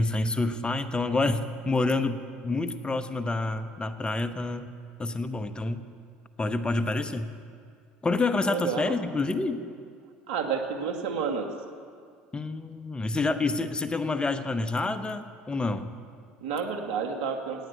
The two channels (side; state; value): both; normal; correlation 0.70